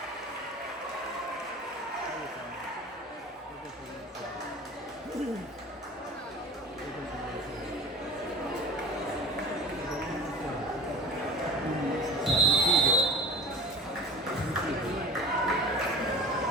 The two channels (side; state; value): both; normal; correlation 0.38